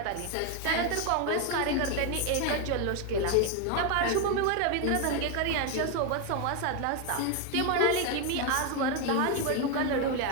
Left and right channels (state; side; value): different; both; correlation 0.01